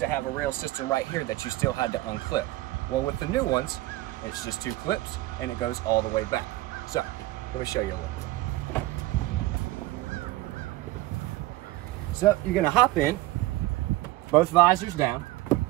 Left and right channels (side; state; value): left; quieter; 17.6 dB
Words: have a rail system right here that you still had to unclip. Well, with the new ones, it's just 2 clips and it goes all the way back. So let me show you a little bit. So you're gonna hop in, both visors down,